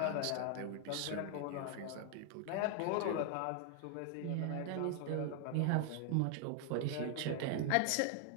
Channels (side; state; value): both; different; correlation 0.00